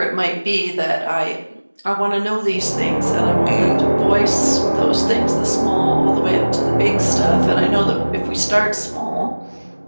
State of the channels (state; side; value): inverted; both; correlation -1.00